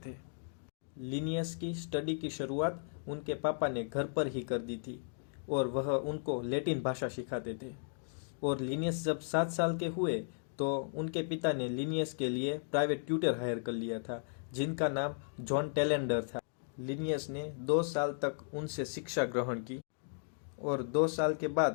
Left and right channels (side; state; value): right; silent; digital silence